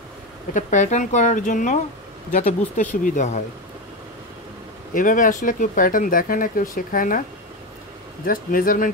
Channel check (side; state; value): both; normal; correlation 0.16